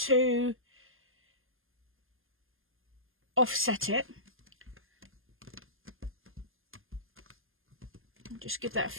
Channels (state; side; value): late; left; 0.59 ms